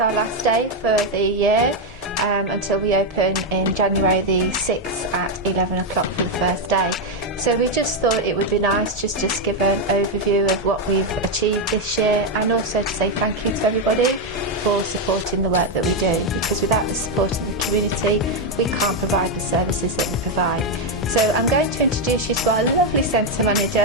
last day for the year until we open in January the 6th at 11 o'clock for the first day. So we just thought it would be nice just to give an overview of what we've achieved this year, and also to say thank you to everybody for supporting the work that we do, because without the support of the community we can't provide the services that we provide. So I'm going to introduce you to our lovely centre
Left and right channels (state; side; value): normal; both; correlation 0.03